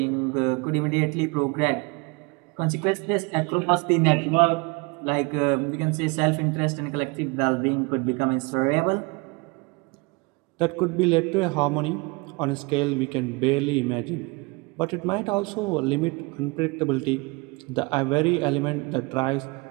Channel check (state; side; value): quieter; left; 28.0 dB